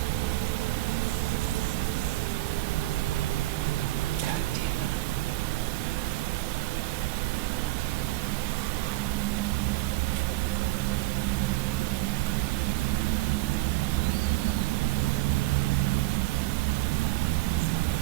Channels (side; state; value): left; quieter; 17.9 dB